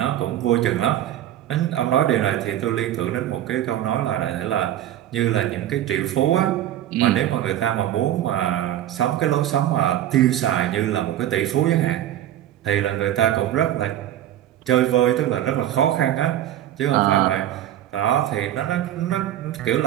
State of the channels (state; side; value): quieter; left; 12.2 dB